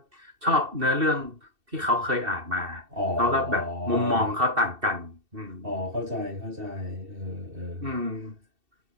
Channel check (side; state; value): left; late; 2.7 ms